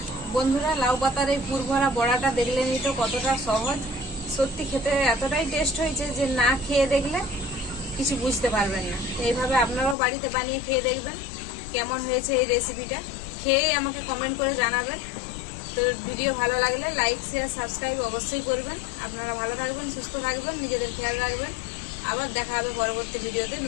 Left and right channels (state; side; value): drops out; right; at 10.0 s